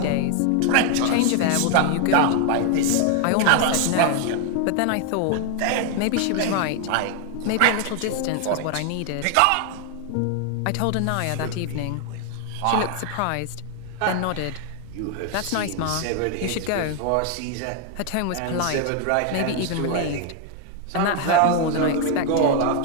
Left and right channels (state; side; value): different; both; correlation 0.00